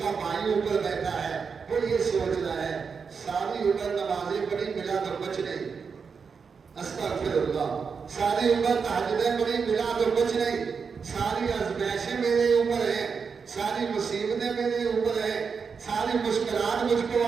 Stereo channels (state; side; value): quieter; left; 5.7 dB